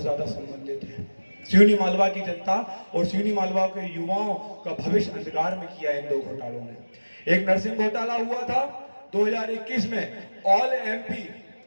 ज्यादा संबंधित है। सिवनी मालवा की जनता और सिवनी मालवा के युवाओं का भविष्य अंधकार में किया इन दो घोटालों ने। एक नर्सिंग घोटाला हुआ था 2021 में, ऑल एमपी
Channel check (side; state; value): both; inverted; correlation -1.00